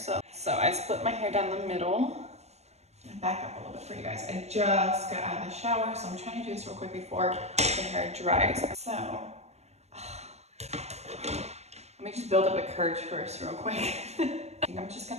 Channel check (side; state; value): left; late; 0.31 ms